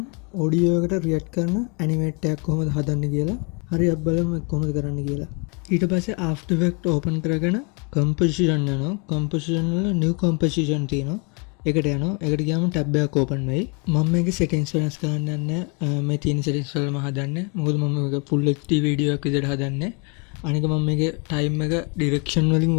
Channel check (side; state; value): right; quieter; 31.6 dB